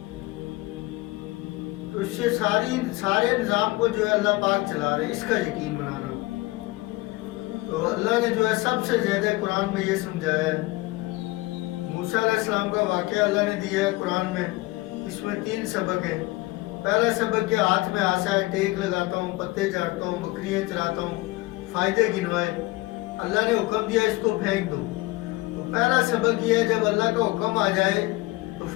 تو اس سے سارے نظام کو جو ہے اللہ پاک چلا رہے ہیں، اس کا یقین بنانا۔ تو اللہ نے جو ہے سب سے زیادہ قرآن میں یہ سمجھایا ہے۔ موسیٰ علیہ السلام کا واقعہ اللہ نے دیا ہے قرآن میں، اس میں 3 سبق ہیں۔ پہلا سبق کہ ہاتھ میں عصا ہے، ٹیک لگاتا ہوں، پتے چاٹتا ہوں، بکریاں چراتا ہوں، فائدے گنوائے۔ اللہ نے حکم دیا اس کو پھینک دو۔ تو پہلا سبق یہ ہے جب اللہ کا حکم آ جائے تو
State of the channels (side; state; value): right; quieter; 20.9 dB